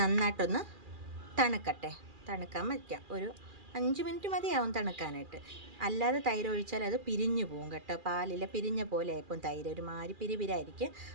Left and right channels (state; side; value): late; left; 2.4 ms